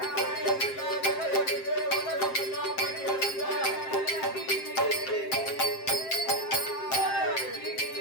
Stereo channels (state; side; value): late; right; 7.6 ms